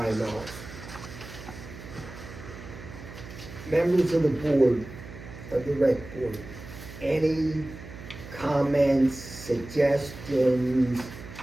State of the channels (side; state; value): right; noise; hum, 14 dB below the sound